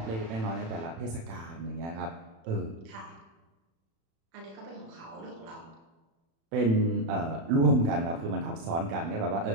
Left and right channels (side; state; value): left; late; 36 ms